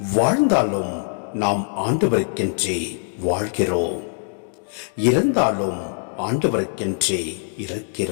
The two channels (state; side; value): silent; right; digital silence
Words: வாழ்ந்தாலும் நாம் ஆண்டவருக்கென்றே வாழ்கிறோம், இறந்தாலும் ஆண்டவருக்கென்றே